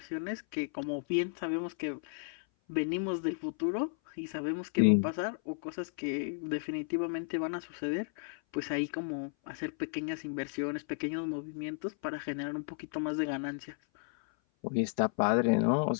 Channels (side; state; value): right; silent; 55 dB below the other